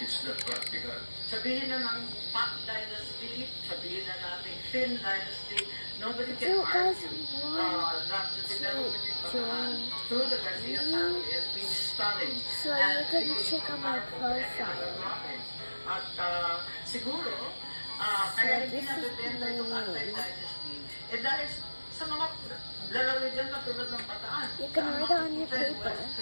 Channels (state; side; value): inverted; both; correlation -1.00